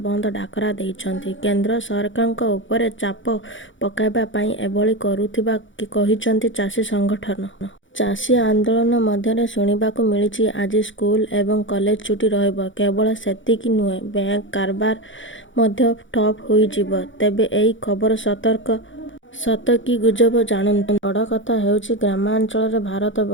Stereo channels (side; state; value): right; late; 0.56 ms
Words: ବନ୍ଦ ଡାକରା ଦେଇଛନ୍ତି। କେନ୍ଦ୍ର ସରକାରଙ୍କ ଉପରେ ଚାପ ପକାଇବା ପାଇଁ ଏଭଳି କରୁଥିବା କହିଛନ୍ତି ଚାଷୀ ସଂଗଠନ। ଚାଷୀ ଆନ୍ଦୋଳନ ମଧ୍ୟରେ ଶୁଣିବାକୁ ମିଳିଛି ଆଜି ସ୍କୁଲ ଏବଂ କଲେଜ ଛୁଟି ରହିବ। କେବଳ ସେତିକି ନୁହେଁ, ବ୍ୟାଙ୍କ କାରବାର ମଧ୍ୟ ଠପ୍ ହୋଇଯିବ। ତେବେ ଏହି ଖବର ସତ କି ଗୁଜବ ଜାଣନ୍ତୁ। ବଡ଼ କଥା ହେଉଛି ଗ୍ରାମାଞ୍ଚଳରେ ଭାରତ